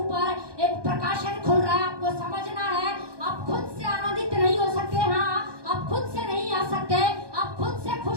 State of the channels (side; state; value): left; late; 1.2 ms